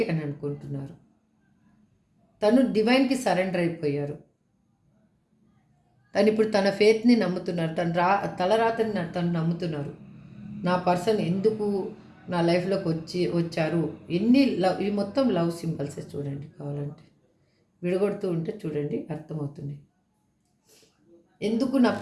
అని అనుకుంటున్నారు. తను డివైన్కి సరెండర్ అయిపోయారు. తను ఇప్పుడు తన ఫేత్ని నమ్ముతున్నారు, తలరాతని తను నమ్ముతున్నారు. నా పర్సన్ ఎందుకు నా లైఫ్లోకి వచ్చారు. ఎన్ని లవ్, ఈ మొత్తం లవ్ సింబల్సే చూడండి, కావాలంటే విడగొడుతూ ఉంటే చూడండి అర్థమవుతుంది. ఎందుకు నా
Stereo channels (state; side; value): identical; both; correlation 1.00